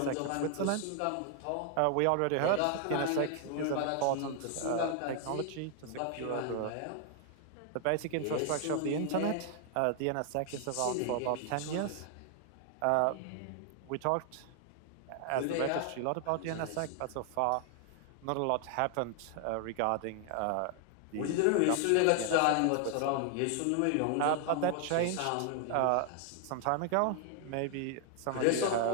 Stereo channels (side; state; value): both; different; correlation 0.00